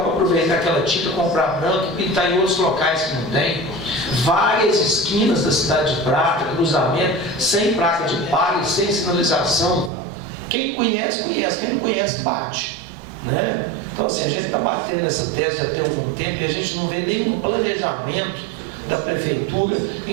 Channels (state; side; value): drops out; left; at 9.9 s